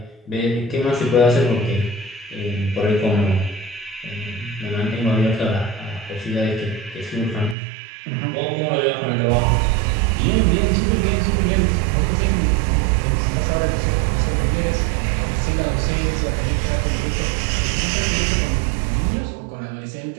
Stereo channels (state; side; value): drops out; left; at 7.6 s